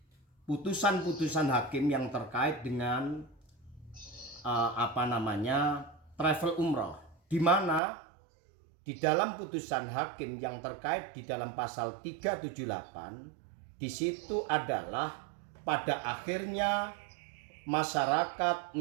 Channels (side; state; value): left; drops out; at 7.8 s